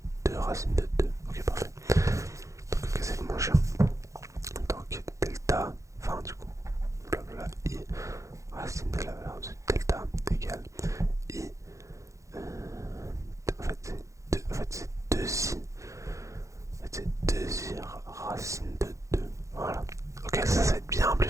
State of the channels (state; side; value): late; left; 0.15 ms